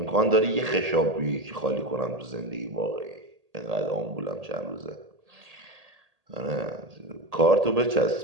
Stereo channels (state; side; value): late; left; 1.8 ms